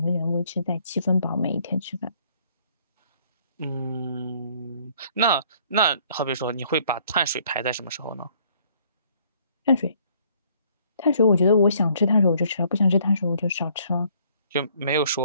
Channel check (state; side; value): inverted; both; correlation -0.62